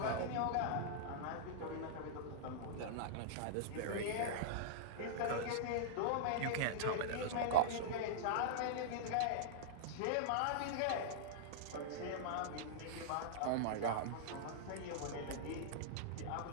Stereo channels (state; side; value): different; both; correlation -0.02